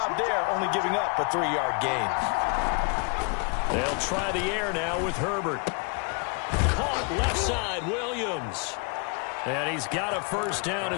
there, only giving up a 3-yard gain. They'll try the air now with Herbert. Caught left side, Williams. And he's got a first down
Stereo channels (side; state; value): right; quieter; 34.5 dB